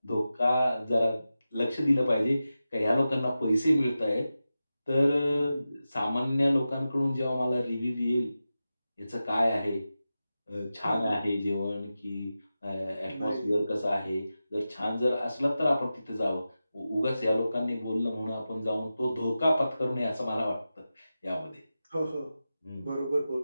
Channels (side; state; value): both; inverted; correlation -0.93